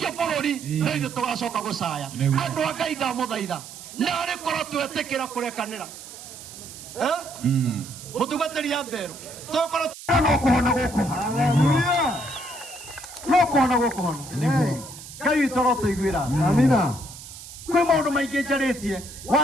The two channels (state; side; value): noise; right; hiss, 14 dB below the sound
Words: bũrũri no ithuĩ tũgacoka gũcaya andũ a Ngai ndamũthaitha narĩ korwo twetĩkĩra kũrekanĩra mũtungatĩri ya Mberũ tũkorwo no kũhona gũkũ no kũhona gũkũ hono Ngai witũ no tũiguĩra amina kwĩ maũndũ maingĩ njarĩtie